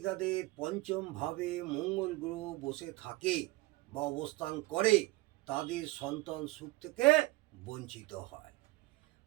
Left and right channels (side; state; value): left; quieter; 20.7 dB